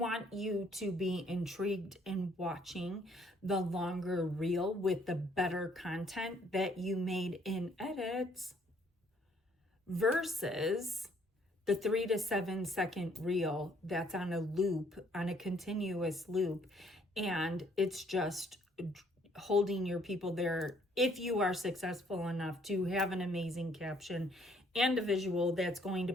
you to be intrigued in watching the longer reel with the better content that you made in edits versus the 3 to 7 second reel that's on a loop, on a continuous loop, and it's just holding your people there if you are successful enough to have an amazing caption and a visual that's going to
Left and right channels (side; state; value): both; normal; correlation 0.64